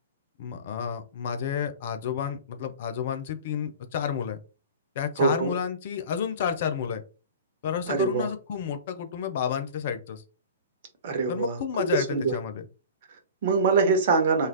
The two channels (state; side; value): inverted; both; correlation -0.37